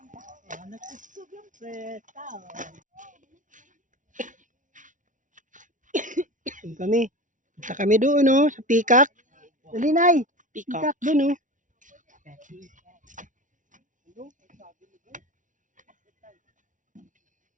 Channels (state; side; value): late; left; 0.37 ms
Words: Nagsusog yung preta. Doon kami. Punta kami doon, no? Sa Pikak. Dali, Nay. Pikak doon, no?